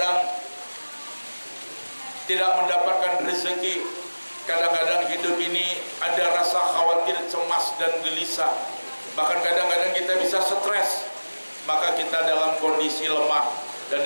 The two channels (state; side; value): inverted; both; correlation -1.00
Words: tidak mendapatkan rezeki. Kadang-kadang hidup ini ada rasa khawatir, cemas dan gelisah. Bahkan kadang-kadang kita bisa stres. Maka kita dalam kondisi lemah. Dan